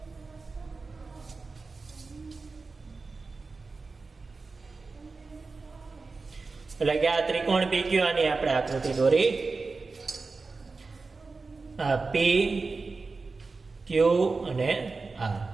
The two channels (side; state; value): left; quieter; 4.0 dB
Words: એટલે કે આ ત્રિકોણ PQR ની આપણે આકૃતિ દોરી. આ P, Q અને R.